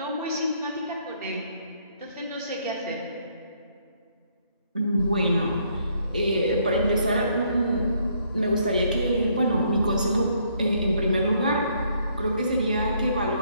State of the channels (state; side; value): inverted; both; correlation -0.69